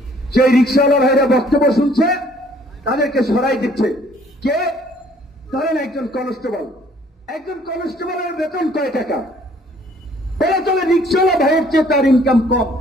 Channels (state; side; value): normal; both; correlation 0.59